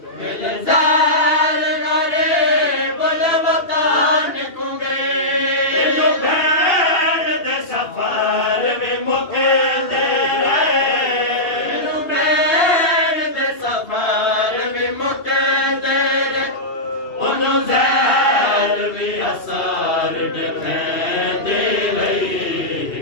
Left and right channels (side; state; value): right; late; 2.8 ms